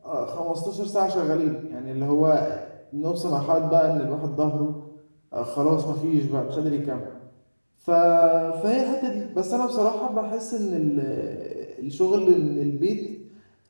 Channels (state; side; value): inverted; both; correlation -1.00